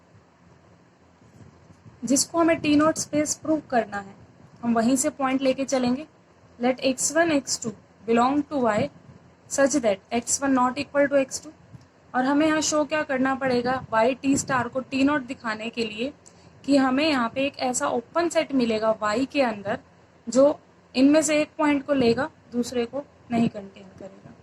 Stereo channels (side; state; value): both; identical; correlation 1.00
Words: जिसको हमें T naught space prove करना है, हम वहीं से point लेके चलेंगे. Let x1 x2 belong to y such that x1 not equal to x2, और हमें यहाँ शो क्या करना पड़ेगा, YT स्टार को T naught दिखाने के लिए कि हमें यहाँ पे एक ऐसा ओपन सेट मिलेगा Y के अंदर जो इनमें से एक पॉइंट को लेगा, दूसरे को नहीं कंटेन करेगा.